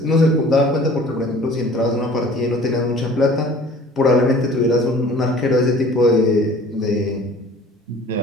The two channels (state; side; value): normal; both; correlation 0.48